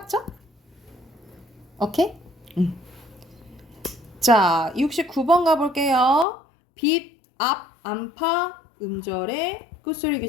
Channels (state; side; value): drops out; right; at 6.2 s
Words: 오케이? 자, 69번 가볼게요. 빛, 앞, 안파, 음절에 끝소리